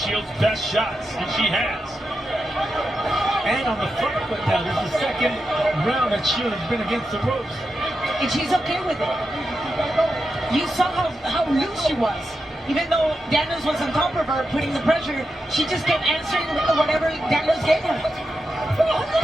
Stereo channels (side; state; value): both; normal; correlation 0.88